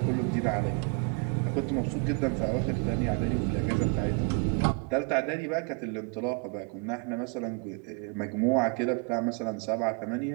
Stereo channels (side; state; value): left; quieter; 32.5 dB